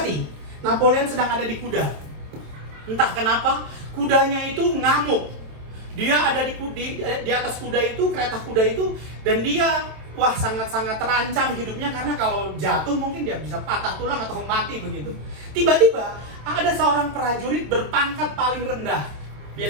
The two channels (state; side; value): late; left; 27 ms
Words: Napoleon sedang ada di kuda. Entah kenapa, kudanya itu ngamuk. Dia ada di atas kuda itu, kereta kuda itu, dan dia sangat-sangat terancam hidupnya karena kalau jatuh mungkin dia bisa patah tulang atau mati begitu. Tiba-tiba ada seorang prajurit berpangkat paling rendah.